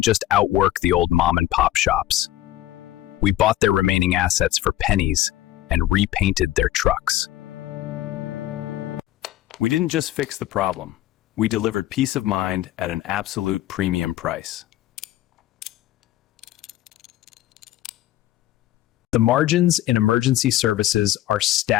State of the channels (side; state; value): right; quieter; 14.4 dB